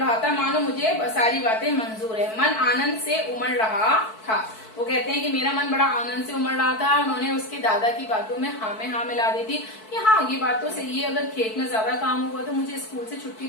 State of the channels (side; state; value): right; late; 4.6 ms